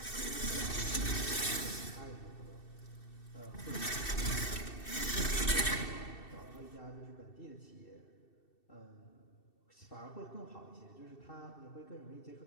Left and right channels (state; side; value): late; right; 2.7 ms